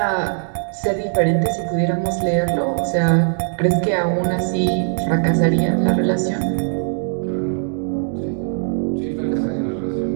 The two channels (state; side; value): silent; left; digital silence